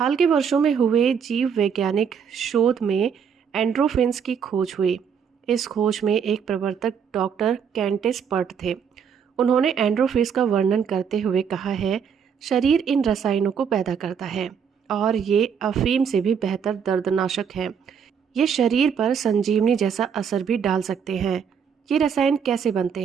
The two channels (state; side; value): quieter; left; 7.2 dB